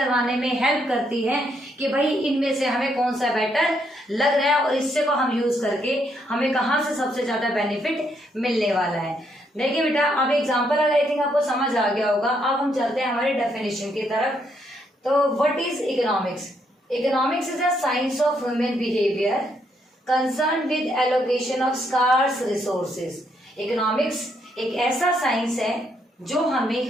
में हेल्प करती है कि भाई इनमें से हमें कौन सा बेटर लग रहा है और इससे को हम यूज करके हमें कहाँ से सबसे ज्यादा बेनिफिट मिलने वाला है। देखिए बेटा, अब एग्जांपल आई थिंक आपको समझ आ गया होगा। अब हम चलते हैं हमारे डेफिनेशन की तरफ। तो what is economics? Economics is a science of human behaviour concern with allocation of scarce resources. Economics एक ऐसा साइंस है जो हमें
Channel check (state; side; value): normal; both; correlation 0.74